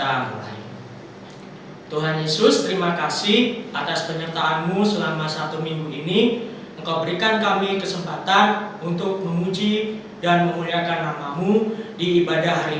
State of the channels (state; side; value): identical; both; correlation 1.00